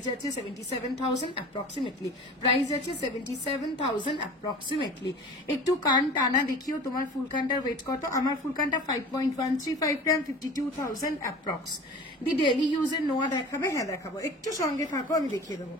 যাচ্ছে 77,000 অ্যাপ্রক্সিমেটলি, প্রাইস যাচ্ছে 77,000 অ্যাপ্রক্সিমেটলি। একটু কান টানা দেখিও তোমার ফুলকানটার ওয়েট কত। আমার ফুলকানটা 5.135 গ্রাম, 52,000 অ্যাপ্রক্স। দি ডেইলি ইউজের নোয়া দেখাবে? হ্যাঁ দেখাবো, একটু সঙ্গে থাকো আমি দেখিয়ে দেবো।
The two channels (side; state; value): both; normal; correlation 0.40